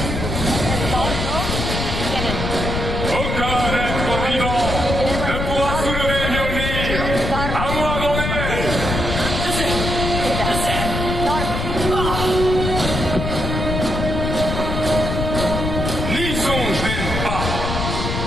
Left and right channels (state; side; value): noise; left; rumble, 2 dB below the sound